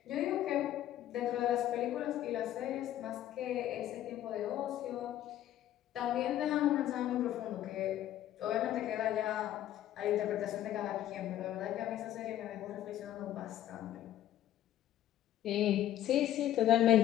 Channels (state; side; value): quieter; right; 12.5 dB